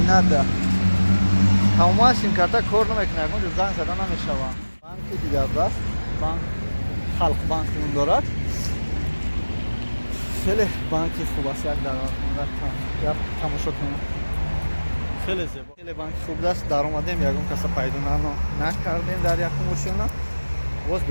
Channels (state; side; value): inverted; both; correlation -1.00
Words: тамома симкарта кор намекунад мо занг зада намешавад банки дигар даст банк халқ банк он дорад хеле банки хуб аст як даромада як тамошо кунем хеле зебо хеле банки хуб аст даромадем ягон каса пайдо накардем дар якум ошёна боз